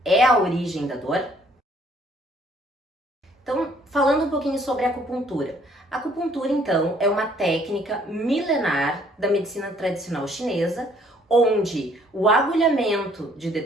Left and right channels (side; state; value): both; normal; correlation 0.62